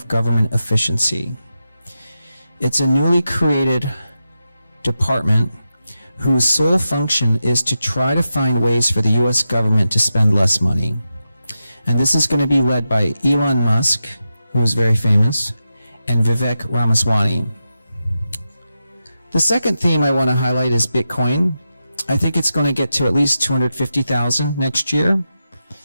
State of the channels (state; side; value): inverted; both; correlation -0.90